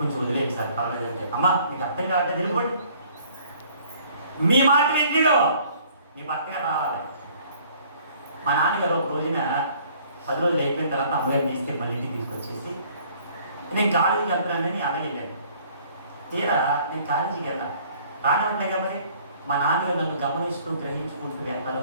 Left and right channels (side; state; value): both; inverted; correlation -0.57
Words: వదిలేండి సార్, పర్వాలేదు అంటే. అమ్మ మీకు అర్థం కావట్లేదు, వెళ్ళిపోండి, మీ మాట వింటాడు, మీ భర్త గారు రావాలి. మా నాన్నగారు ఒక రోజున 10 రోజులు అయిపోయిన తర్వాత అమ్మగారిని తీసుకెళ్ళి మళ్ళీ ఇంటికి తీసుకొచ్చేసి, నేను కాలేజీకి వెళ్తున్నానని అలాగే వెళ్ళాను. తీరా నేను కాలేజీకి వెళ్ళాను, రానే ఉంటాయి కాబట్టి మా నాన్నగారు నన్ను గమనిస్తూ గ్రహించుకుంటూ వెనకాల